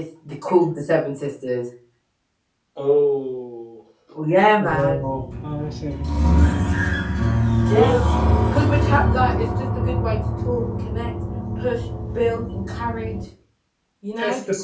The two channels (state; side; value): identical; both; correlation 1.00